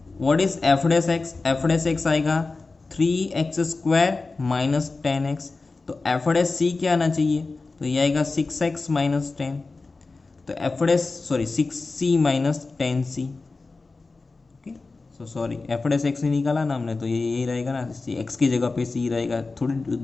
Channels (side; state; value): right; quieter; 3.7 dB